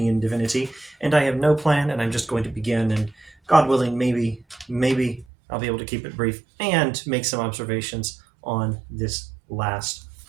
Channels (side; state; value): left; drops out; at 5.2 s